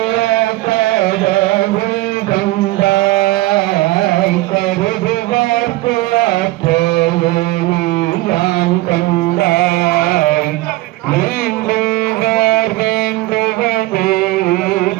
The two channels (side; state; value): left; quieter; 18.9 dB